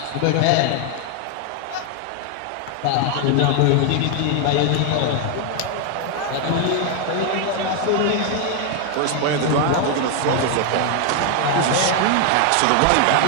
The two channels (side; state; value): both; different; correlation 0.00